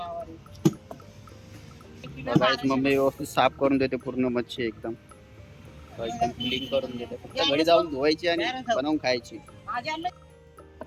बघा एक मम्मी व्यवस्थित साफ करून देते पूर्ण मच्छी एकदम एकदम क्लीन करून देते फक्त घरी जाऊन धुवायची आणि बनवून खायची.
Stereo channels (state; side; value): identical; both; correlation 1.00